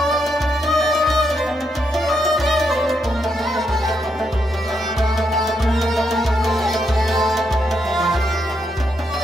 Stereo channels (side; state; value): both; normal; correlation 0.80